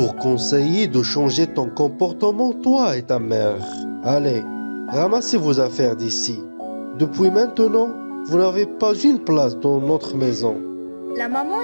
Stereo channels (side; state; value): both; inverted; correlation -1.00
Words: conseillé de changer ton comportement, toi et ta mère. Allez, ramassez vos affaires d'ici. Depuis maintenant, vous n'avez pas une place dans notre maison. La maman